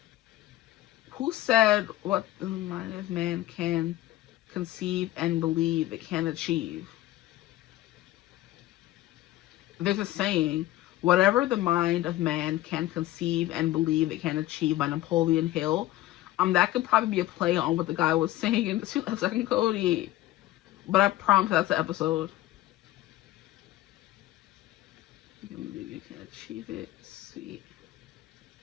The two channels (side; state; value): right; quieter; 15.5 dB